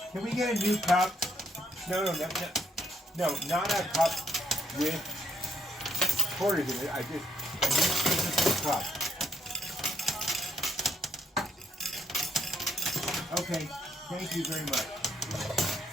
Can we get a new cup? No, not a cup with quarters in it. I need a physical cup. Okay, thank you very much.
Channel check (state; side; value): normal; both; correlation 0.76